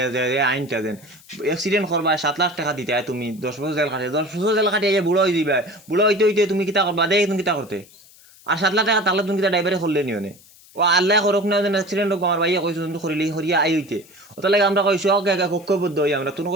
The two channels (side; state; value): left; noise; hiss, 25 dB below the sound